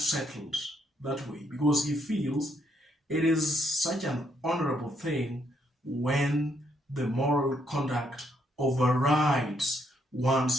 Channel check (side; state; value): both; normal; correlation 0.74